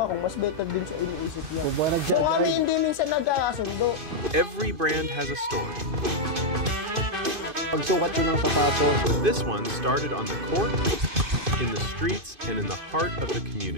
mas better dun sa iniisip niya. So kami hindi minsan nagkakasundo. Every brand has a story. Pagsukat yun ng sapatos. But this one started on the court, in the streets, and in the heart of the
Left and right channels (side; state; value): left; late; 2.5 ms